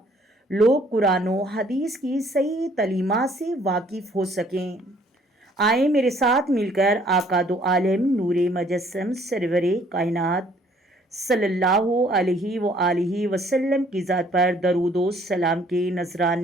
लोग कुरान और हदीस की सही तालीमात से वाकिफ़ हो सकें। आए मेरे साथ मिलकर आका दो आलम नूरे मजस्सम सरवरे कायनात सल्लल्लाहु अलैहि वसल्लम की ज़ात पर दरूद व सलाम के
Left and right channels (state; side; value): normal; both; correlation 0.61